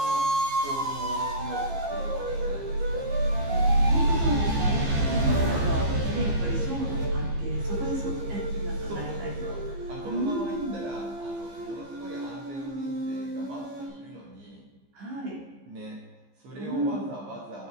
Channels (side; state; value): left; late; 15 ms